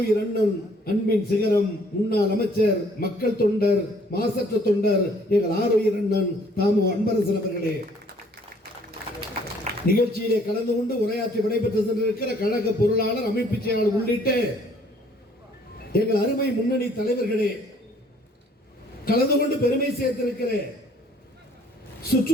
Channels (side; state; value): both; normal; correlation 0.60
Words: அண்ணன், அன்பின் சிகரம், முன்னாள் அமைச்சர், மக்கள் தொண்டர், மாசற்ற தொண்டர், எங்கள் ஆருயிர் அண்ணன் தாமு அன்பரசன் அவர்களே, நிகழ்ச்சியிலே கலந்து கொண்டு உரையாற்றி விடைபெற்று சென்றிருக்கிற கழக பொருளாளர், அமைப்பு செயலாளர் உள்ளிட்ட எங்கள் அருமை முன்னணி தலைவர்களே, கலந்து கொண்டு பெருமை சேர்த்திருக்கிற